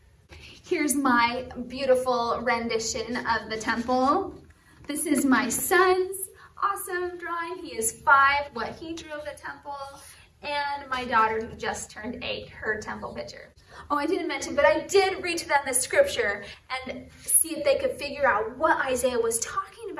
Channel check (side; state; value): both; identical; correlation 1.00